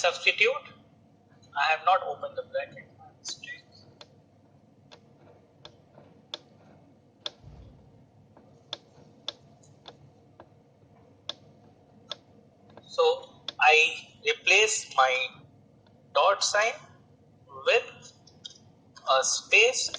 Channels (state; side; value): identical; both; correlation 1.00